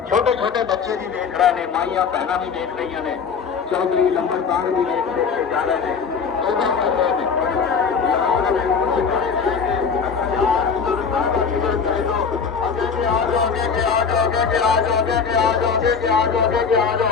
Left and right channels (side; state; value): right; quieter; 5.9 dB